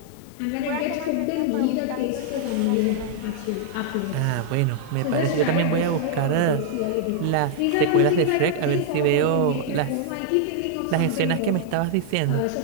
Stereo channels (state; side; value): different; both; correlation -0.01